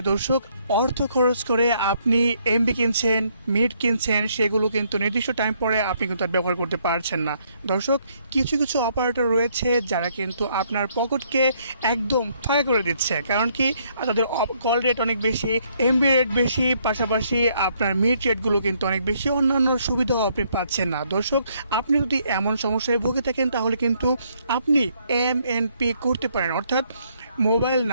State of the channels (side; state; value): both; inverted; correlation -0.70